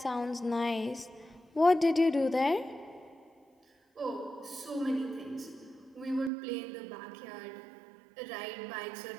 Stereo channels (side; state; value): left; drops out; at 6.3 s